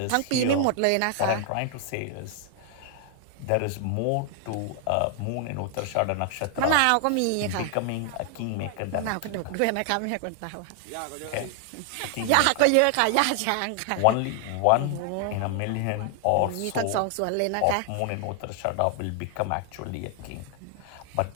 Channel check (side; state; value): both; different; correlation 0.00